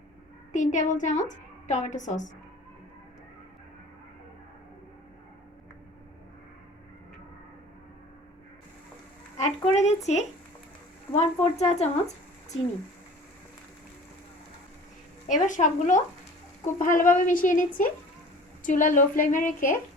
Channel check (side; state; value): both; normal; correlation 0.44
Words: 3 টেবিল চামচ টমেটো সস। অ্যাড করে দিচ্ছি 1/4 চা চামচ চিনি। এবার সবগুলো খুব ভালোভাবে মিশিয়ে নিচ্ছি। চুলা লো ফ্লেমে রেখে